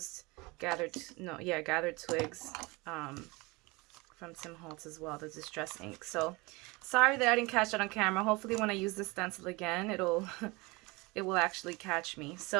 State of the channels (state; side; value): quieter; left; 24.8 dB